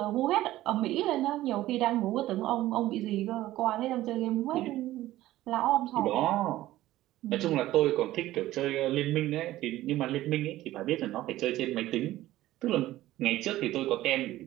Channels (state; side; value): quieter; left; 15.4 dB